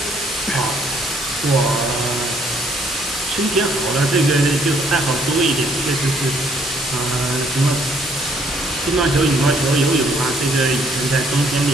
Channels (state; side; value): normal; both; correlation 0.66